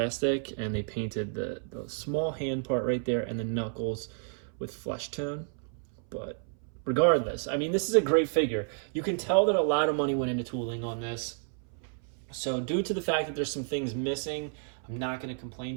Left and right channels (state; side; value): silent; left; 57 dB below the other